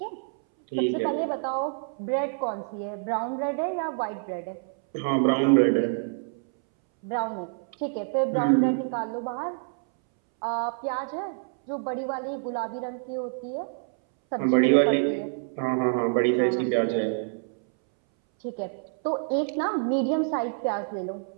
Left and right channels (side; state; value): left; silent; 60 dB below the other